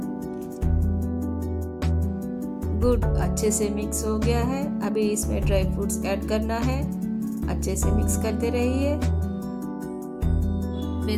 गुड़ अच्छे से मिक्स हो गया है। अभी इसमें ड्राई फ्रूट्स ऐड करना है। अच्छे से मिक्स करते रहिए।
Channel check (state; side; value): identical; both; correlation 1.00